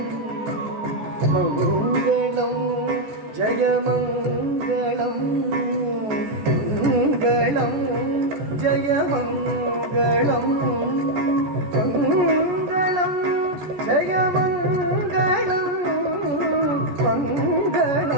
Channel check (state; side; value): late; left; 14 ms